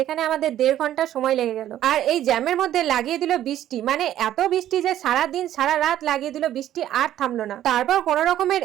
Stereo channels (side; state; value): left; quieter; 12.2 dB